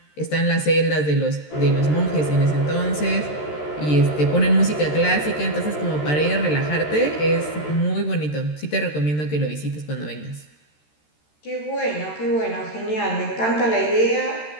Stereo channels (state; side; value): late; right; 13 ms